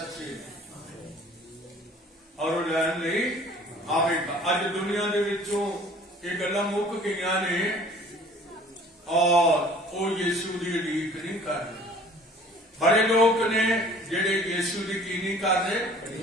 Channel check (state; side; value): normal; both; correlation 0.51